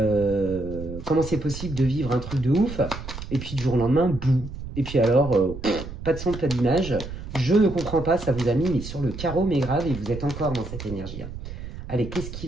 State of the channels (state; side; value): noise; right; rumble, 10 dB below the sound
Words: c'est possible de vivre un truc de ouf, et puis du jour au lendemain, bouh. Et puis alors, pas de son, pas d'image. Je ne comprends pas, ça vous a mis mais sur le carreau, mais grave, et vous êtes encore dans cette énergie. Hein. Allez, qu'est-ce qui